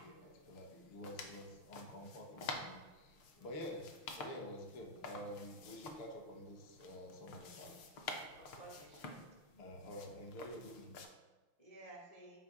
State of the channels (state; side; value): late; right; 6.5 ms